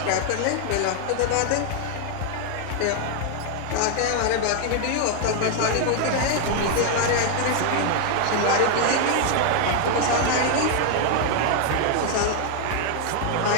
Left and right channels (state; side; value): different; both; correlation 0.00